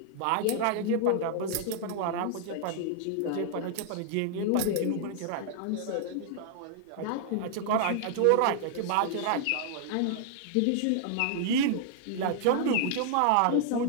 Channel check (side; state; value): both; different; correlation -0.01